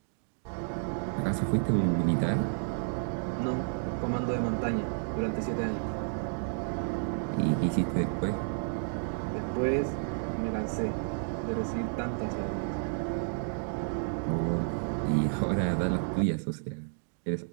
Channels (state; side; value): silent; left; digital silence